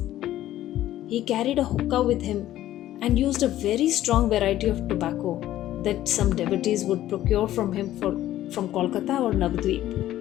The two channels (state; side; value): quieter; right; 13.6 dB